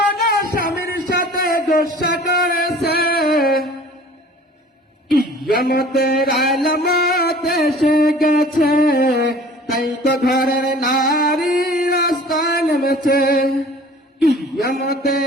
স্বামীর সাথে গোসা করেছে। কিয়ামতের আলামত এসে গেছে, তাই তো ঘরের নারী রাস্তা নেমেছে।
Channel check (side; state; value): both; normal; correlation 0.47